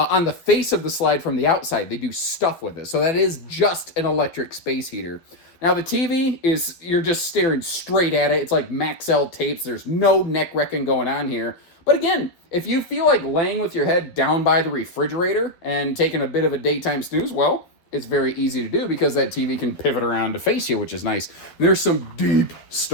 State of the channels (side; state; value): right; late; 12 ms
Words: the face of the slide from the outside, they do stuff with it. So that is just an electric space heater. Now the TV is, you're just staring straight at it. It's like Maxell tapes. There's no neck wrecking going on here. But again, if you feel like laying with your head down by the refrigerator and taking a bit of a daytime snooze, well, it's very easy to do because that TV can pivot around to face you, which is nice. There's some deep